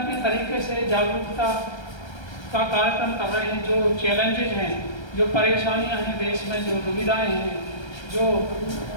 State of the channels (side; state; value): right; late; 1.3 ms